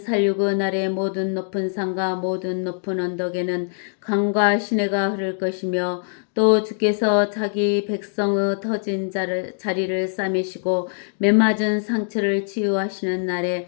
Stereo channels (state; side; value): silent; right; digital silence